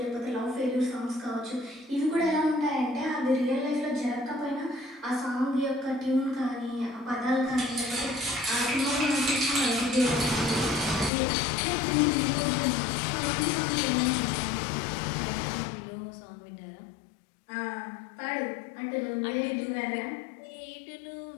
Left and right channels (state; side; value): drops out; right; at 11.1 s